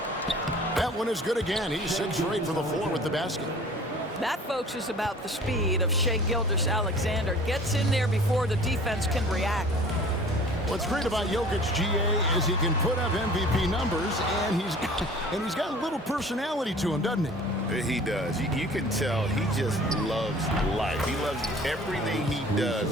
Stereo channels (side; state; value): both; normal; correlation 0.47